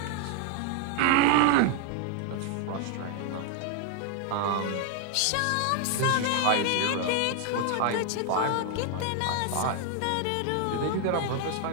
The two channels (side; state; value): both; different; correlation 0.00